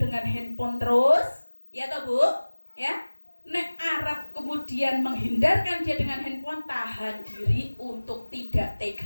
handphone terus, ya toh Bu? Ya. Nek Arab kemudian menghindarkan dia dengan handphone, tahan diri untuk tidak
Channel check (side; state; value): both; inverted; correlation -1.00